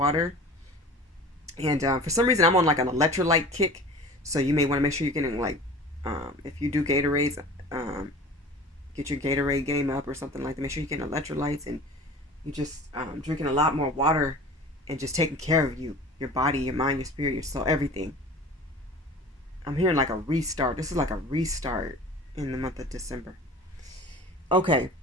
And for some reason, I'm on like an electrolyte kick. So you may want to make sure you're getting like, if you do Gatorades, get your Gatorade game up or something like that. Make sure you're getting electrolytes and you just drinking a lot more water and just taking care of you, your body, your mind, your spirit, your soul, everything. I'm hearing like a restart. This is like a restart in the month of December. Okay.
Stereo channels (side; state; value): both; normal; correlation 0.40